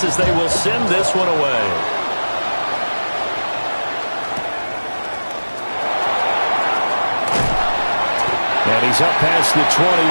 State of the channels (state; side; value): inverted; both; correlation -1.00